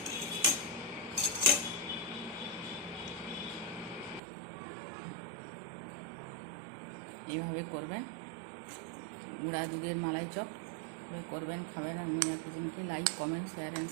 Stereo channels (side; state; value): left; drops out; at 4.2 s